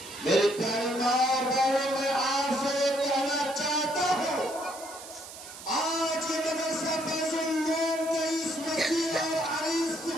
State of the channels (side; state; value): right; noise; hiss, 14 dB below the sound